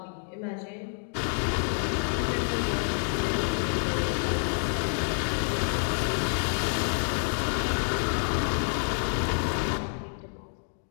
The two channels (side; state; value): right; silent; 59 dB below the other